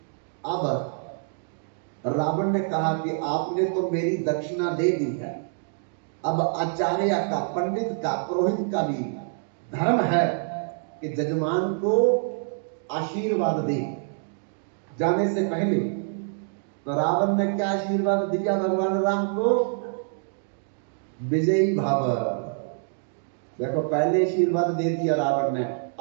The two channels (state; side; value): silent; left; digital silence